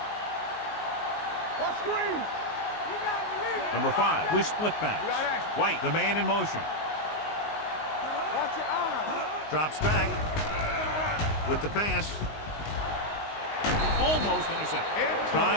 Watch screen. You got to believe. Number 5 with split backs. White, the man in motion. Watch your eye. Drops back with the pass. Almost intercepted.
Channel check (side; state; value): right; late; 19 ms